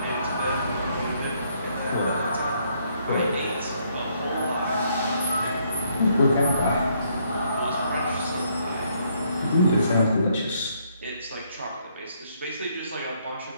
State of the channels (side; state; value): both; inverted; correlation -0.70